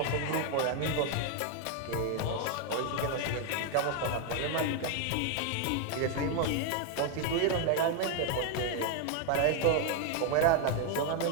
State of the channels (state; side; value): different; both; correlation 0.01